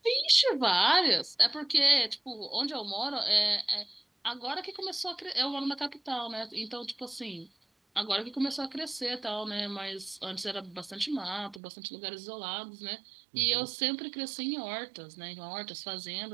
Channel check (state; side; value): drops out; left; at 11.6 s